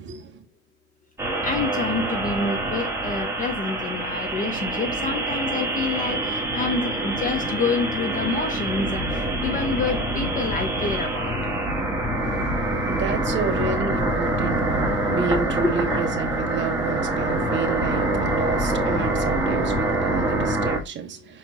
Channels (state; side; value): normal; both; correlation 0.34